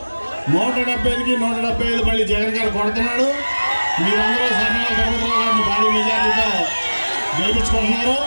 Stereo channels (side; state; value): both; inverted; correlation -1.00